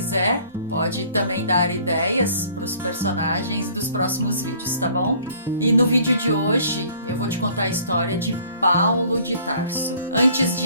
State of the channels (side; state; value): both; inverted; correlation -0.55